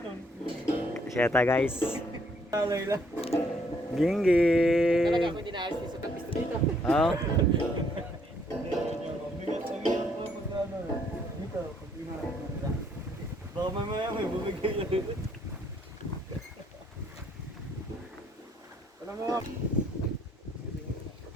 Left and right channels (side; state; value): both; normal; correlation 0.68